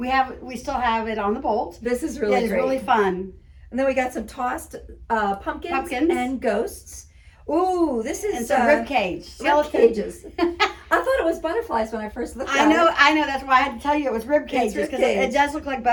still have it on the bolt. This is really great. It's really fun. And then we got some tossed pumpkins and ghosts. Ooh, this is some rib cage. Rib cages. I thought it was butterflies when I first looked at it. I know. That's why I had to tell you it was rib cages, because it does look like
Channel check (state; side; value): identical; both; correlation 1.00